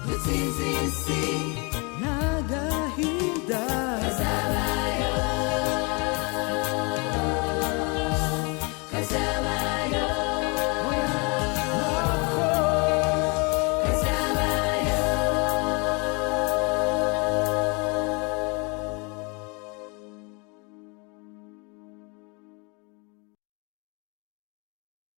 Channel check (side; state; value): right; quieter; 31.5 dB